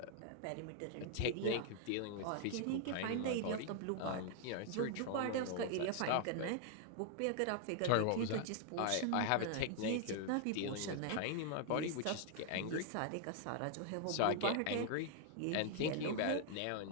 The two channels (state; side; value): different; both; correlation 0.00